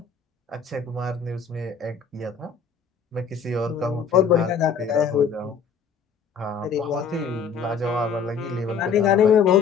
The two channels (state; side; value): quieter; right; 6.1 dB